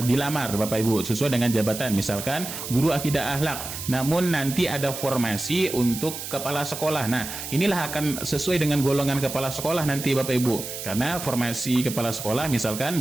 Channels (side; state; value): right; noise; hiss, 8 dB below the sound